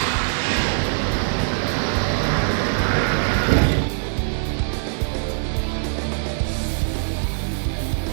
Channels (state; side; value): silent; left; digital silence